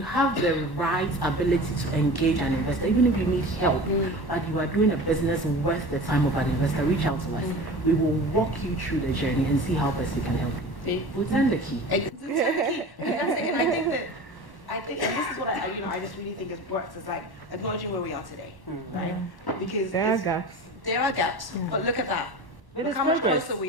the right ability to engage an investor, even if you need help, but you are doing a business worth the time of an investor, reach out to us. We will walk you through the journey and see how best we can help you. We'll turn the key. And I think, and this is what I just really think it works. It's like acknowledging where we are today, right? Because there are gaps. There are gaps, but look at that. But look how much closer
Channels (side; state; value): right; late; 1.1 ms